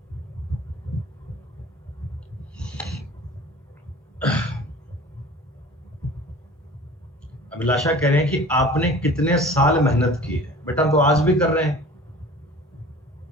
अभिलाषा कह रहे हैं कि आपने कितने साल मेहनत की है। बेटा तो आज भी कर रहे हैं,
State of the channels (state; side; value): normal; both; correlation 0.42